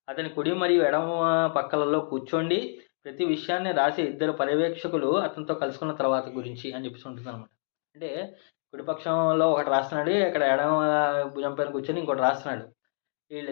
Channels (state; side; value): silent; right; 60 dB below the other